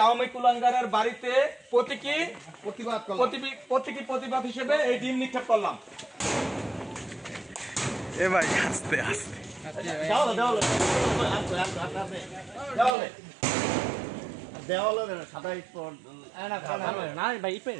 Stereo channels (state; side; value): drops out; left; at 13.0 s